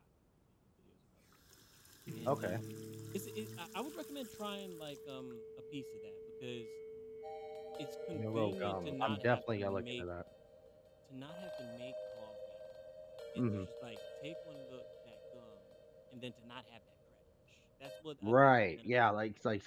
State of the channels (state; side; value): identical; both; correlation 1.00